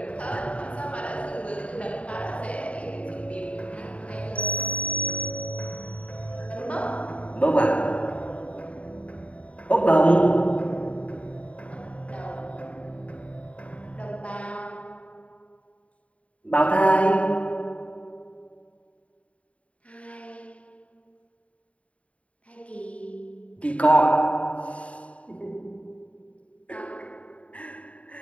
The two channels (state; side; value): late; right; 0.065 ms